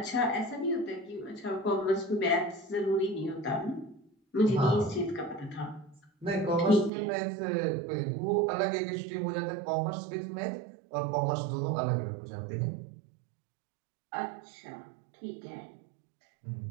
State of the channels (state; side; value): drops out; left; at 6.9 s